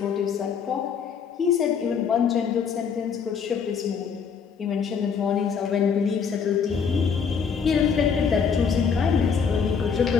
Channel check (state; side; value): quieter; right; 6.5 dB